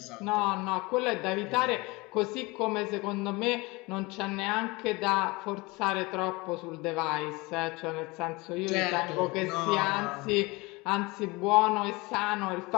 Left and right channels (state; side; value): quieter; right; 24.1 dB